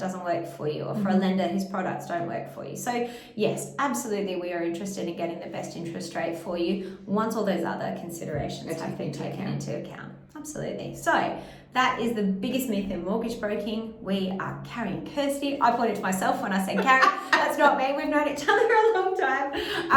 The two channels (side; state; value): both; identical; correlation 1.00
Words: work for you, or for a lender whose products don't work for you. So yes, absolutely, we are interested in getting the best interest rate for you once all those other considerations have been taken into account. Absolutely. So that is the biggest myth in mortgage broking. We are Carrie and Kirsty. I pointed to myself when I said Carrie. That's not me. We've known each other a long